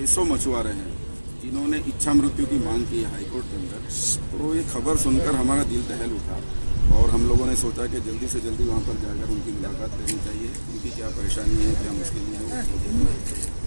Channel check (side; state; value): both; inverted; correlation -1.00